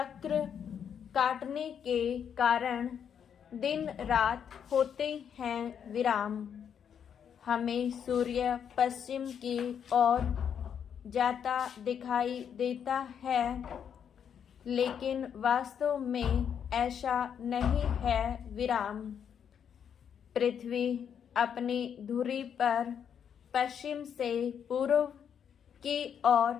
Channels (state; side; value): quieter; right; 8.1 dB